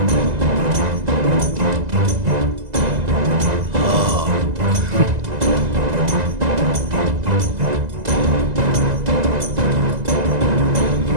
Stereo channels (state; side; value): late; left; 2.0 ms